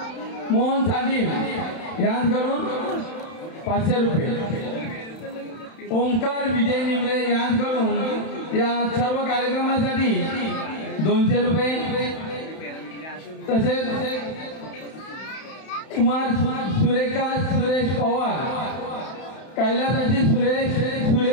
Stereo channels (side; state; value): right; late; 31 ms